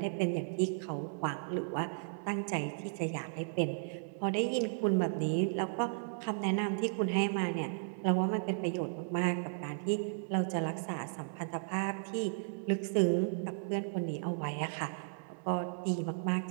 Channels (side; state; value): left; silent; 55 dB below the other